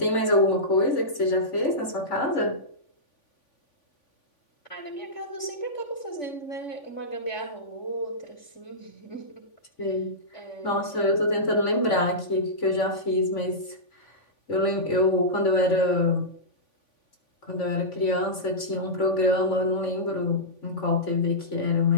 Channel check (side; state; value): right; late; 3.5 ms